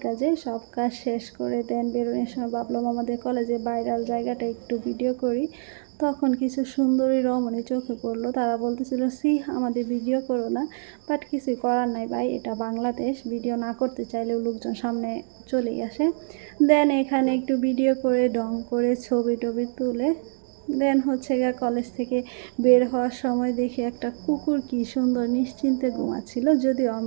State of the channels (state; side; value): silent; left; digital silence